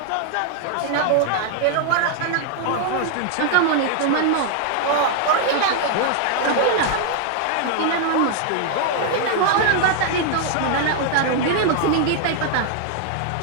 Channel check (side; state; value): both; different; correlation 0.00